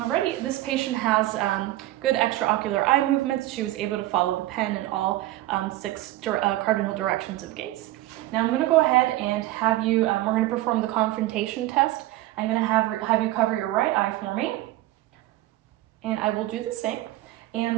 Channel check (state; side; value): quieter; left; 16.3 dB